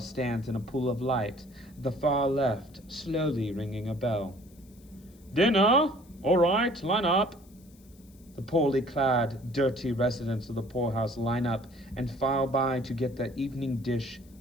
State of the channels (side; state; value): left; noise; hiss, 28 dB below the sound